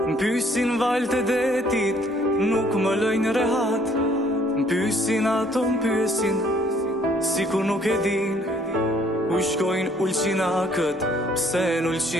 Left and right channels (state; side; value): normal; both; correlation 0.62